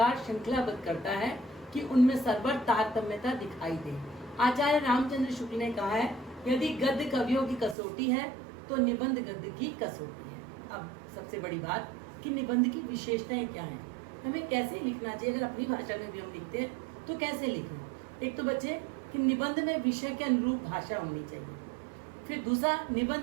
श्रृंखलाबद्ध करता है कि उनमें सर्वर तारतम्यता दिखाई दे। आचार्य रामचंद्र शुक्ल ने कहा है, यदि गद्य कवियों की कसौटी है तो निबंध गद्य की कसौटी है। अब सबसे बड़ी बात कि निबंध की विशेषताएं क्या हैं, हमें कैसे लिखना चाहिए। अगर अपनी भाषा में भी हम लिखते हैं तो कैसे लिखें। एक तो बच्चे कि निबंध में विषय के अनुरूप भाषा होनी चाहिए। फिर दूसरा,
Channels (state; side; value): drops out; left; at 7.8 s